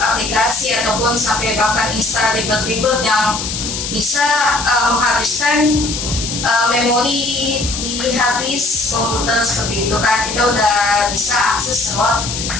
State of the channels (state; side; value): noise; left; hiss, 5 dB below the sound